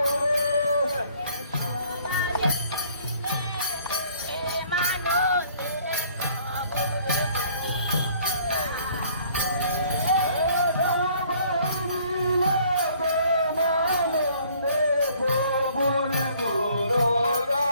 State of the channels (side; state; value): both; inverted; correlation -0.58